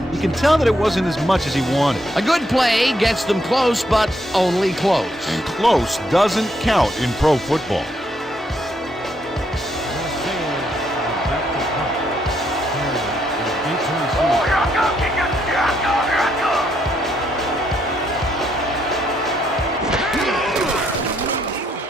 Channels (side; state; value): both; normal; correlation 0.74